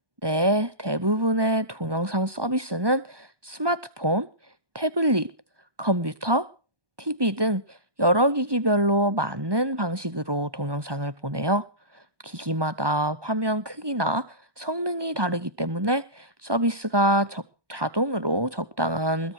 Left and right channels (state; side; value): late; left; 1.2 ms